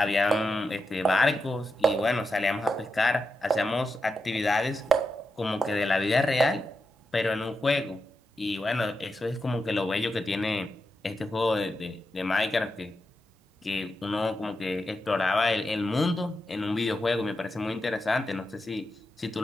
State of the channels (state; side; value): normal; both; correlation 0.87